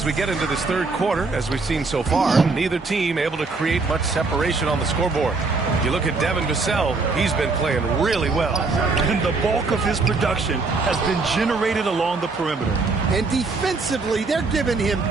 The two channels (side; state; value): left; quieter; 3.9 dB